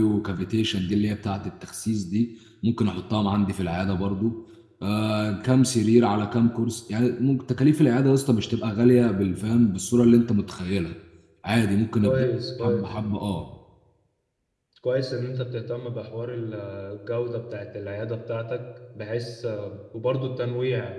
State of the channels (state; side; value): identical; both; correlation 1.00